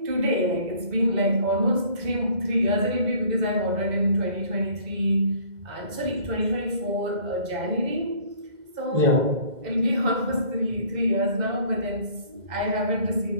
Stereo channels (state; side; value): late; left; 2.0 ms